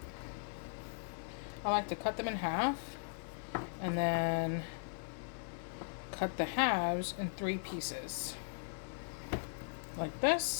I like to cut them in half and then cut the halves in 3 pieces like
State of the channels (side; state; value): right; silent; digital silence